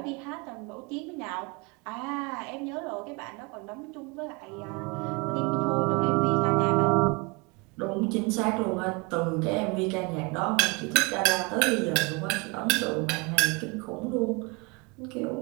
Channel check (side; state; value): left; quieter; 28.0 dB